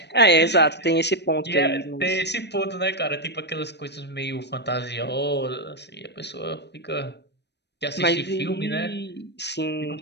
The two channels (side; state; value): right; late; 0.50 ms